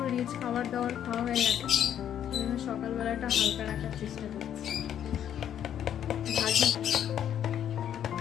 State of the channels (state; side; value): quieter; right; 9.9 dB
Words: রিচ খাবার দাবার খাওয়া হয়ে গেছে, ওই জন্য সকালবেলাটা হালকা রাখার চেষ্টা করছি।